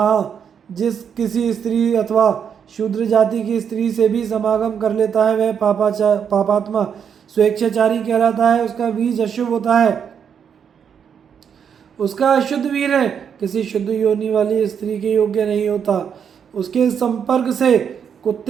जिस किसी स्त्री अथवा शूद्र जाति की स्त्री से भी समागम कर लेता है वह पापात्मा स्वेच्छाचारी कहलाता है। उसका बीज अशुभ होता है, उसका अशुद्ध वीर है किसी शुद्ध योनि वाली स्त्री के योग्य नहीं होता। उसके संपर्क से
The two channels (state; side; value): quieter; left; 7.6 dB